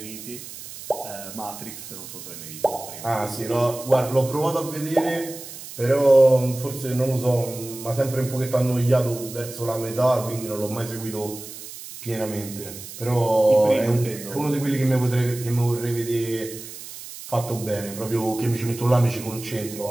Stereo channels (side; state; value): right; noise; hiss, 13 dB below the sound